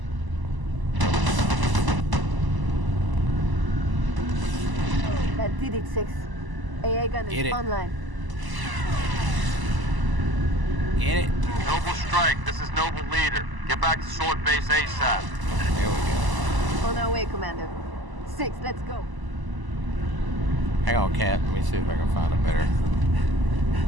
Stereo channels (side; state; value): left; late; 1.0 ms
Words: That did it, 6. AA gun Get is it. online. Get it. Noble Strike, this is Noble Leader. Get back to Sword Base ASAP. There we go. On our way, Commander. 6, let's go. Hang on, Cat. Let me see if I can find a better